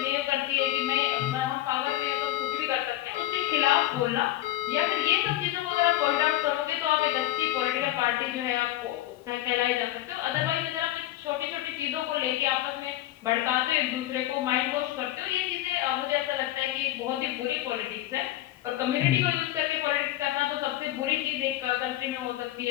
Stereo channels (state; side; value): quieter; right; 14.5 dB